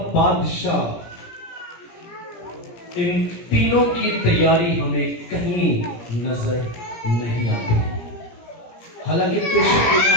बादशाह, इन तीनों की तैयारी हमें कहीं नजर नहीं आती। हालांकि पेशेंट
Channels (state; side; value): late; right; 17 ms